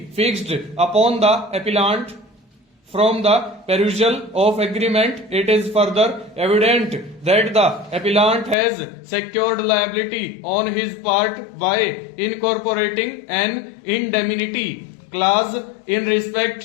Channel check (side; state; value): right; drops out; at 8.6 s